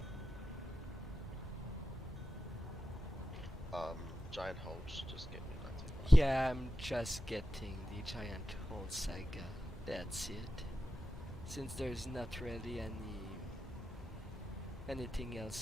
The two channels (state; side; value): normal; both; correlation 0.91